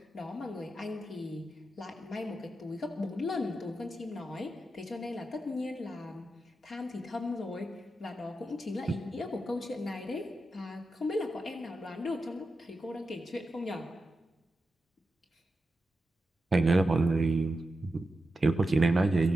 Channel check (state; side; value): normal; both; correlation 0.90